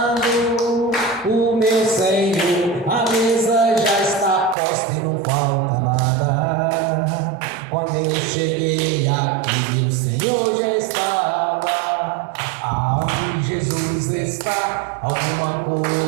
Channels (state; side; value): drops out; left; at 4.5 s